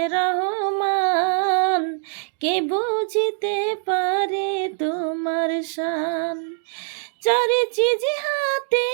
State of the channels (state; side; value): silent; left; digital silence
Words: রহমান, কে বুঝিতে পারে তোমার শান। চারি চিজ হাতে